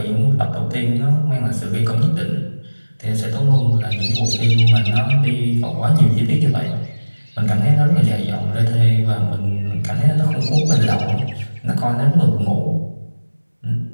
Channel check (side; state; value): both; inverted; correlation -1.00